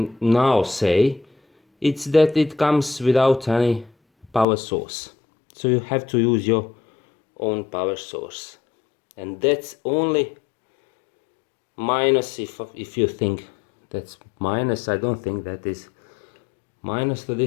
now say, it's that it comes without any power source. So you have to use your own power source. And that's only minus. If you think that's minus, I don't think that is minus to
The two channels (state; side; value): drops out; right; at 4.5 s